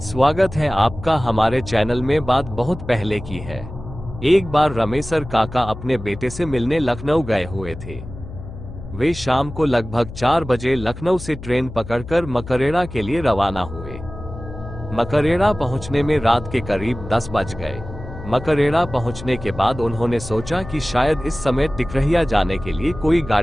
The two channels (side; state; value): left; noise; hum, 12 dB below the sound